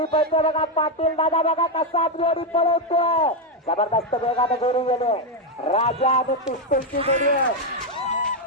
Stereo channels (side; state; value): both; normal; correlation 0.04